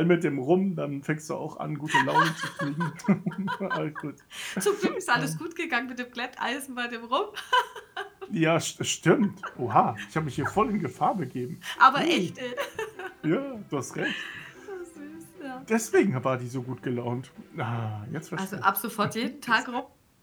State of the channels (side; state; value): both; identical; correlation 1.00